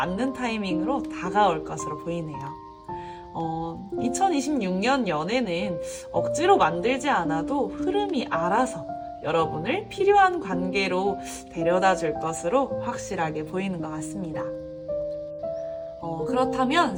타이밍으로 다가올 것으로 보이네요. 2026년 연애는 억지로 만들지 않아도 흐름이 알아서 여러분을 필요한 관계로 데려다 줄 것으로 확실하게 보이는 것 같습니다. 그렇다면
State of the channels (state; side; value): identical; both; correlation 1.00